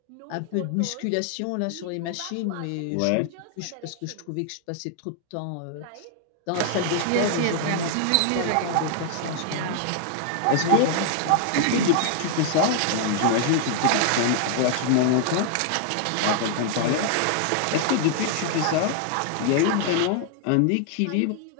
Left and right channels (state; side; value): different; both; correlation 0.00